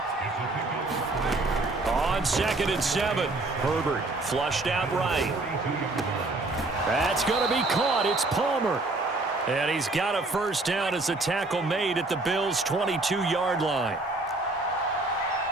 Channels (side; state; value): left; quieter; 3.0 dB